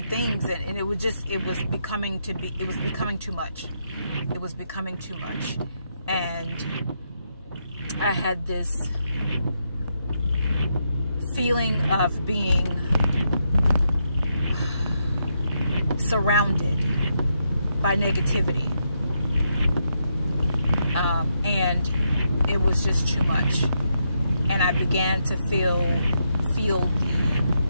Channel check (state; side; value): inverted; both; correlation -0.81